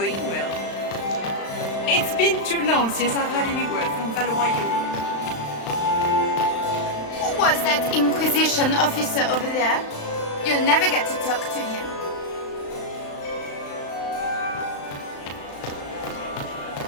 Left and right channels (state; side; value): late; right; 35 ms